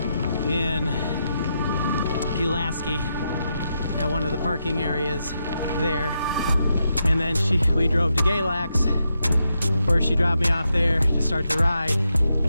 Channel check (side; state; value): both; inverted; correlation -0.84